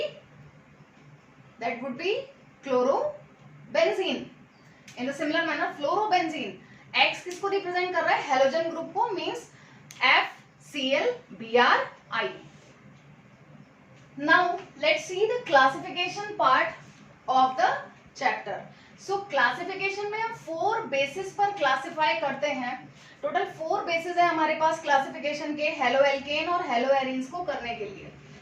chlorobenzene. In the similar manner, fluorobenzene, X किसको रिप्रेजेंट कर रहा है? हेलोजन ग्रुप को, means FCl-Bri. Now let's see the classification part of the chapter. So classification में हम 4 बेसिस पर क्लासिफाई करते हैं. टोटल 4 बेसिस है हमारे पास क्लासिफिकेशन के हेलो एल्केन और हेलो एरीन्स को करने के लिए.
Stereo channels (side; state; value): both; identical; correlation 1.00